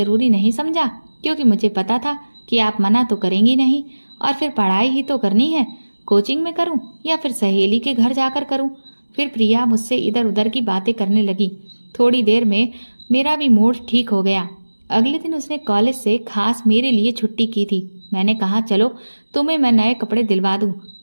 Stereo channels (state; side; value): inverted; both; correlation -1.00